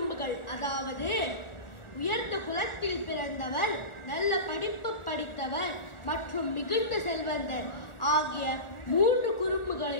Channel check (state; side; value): late; right; 1.4 ms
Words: அதாவது உயர்ந்த குலத்தில் பிறந்தவர், நல்ல படிப்பு படித்தவர் மற்றும் மிகுந்த செல்வந்தர் ஆகிய 3